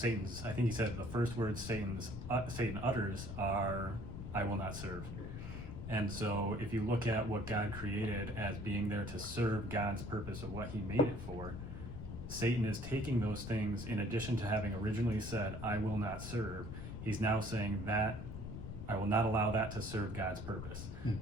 I think he said the first words Satan utters are, "I will not serve." And so if you look at what God created as being there to serve God's purpose of what he made it for, Satan is taking those things, in addition to having originally said, "I will not serve," he's now saying that I will not allow that to serve God's purpose.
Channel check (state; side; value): noise; left; rumble, 8 dB below the sound